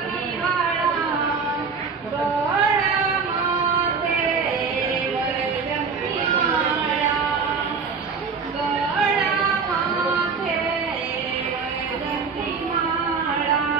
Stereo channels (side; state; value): left; quieter; 5.2 dB